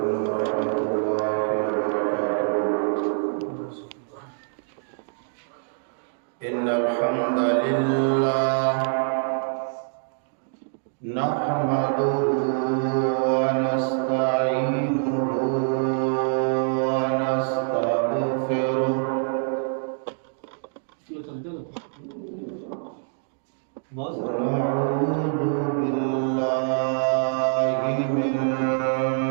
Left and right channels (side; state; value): left; silent; digital silence